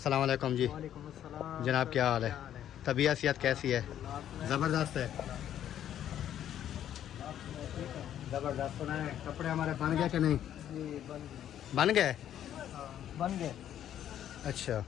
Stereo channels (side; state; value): right; quieter; 10.7 dB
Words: वालेकुम जी। वालेकुम अस्सलाम। जनाब क्या हाल है? तबीयत सेहत कैसी है? ज़बरदस्त है, ज़बरदस्त। सुना है कपड़े हमारे बन गए कि नहीं? जी बन गए? बन गए। अच्छा